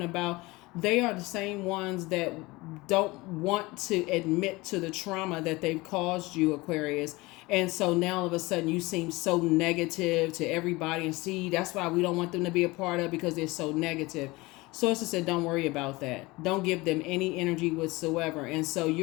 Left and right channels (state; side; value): quieter; right; 22.1 dB